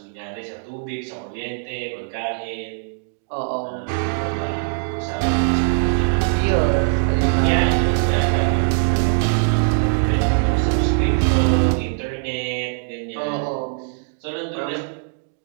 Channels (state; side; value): silent; left; digital silence